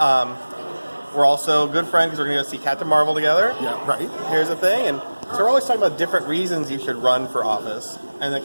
we're also good friends because we're going to go see Captain Marvel together. Yeah, right. Here's the thing. And so we're always talking about different reasons you should run for office. And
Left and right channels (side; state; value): both; inverted; correlation -1.00